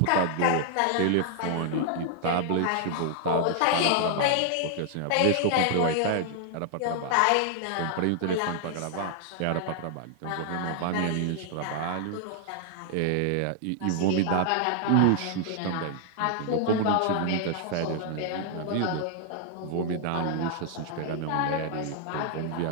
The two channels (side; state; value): both; different; correlation 0.00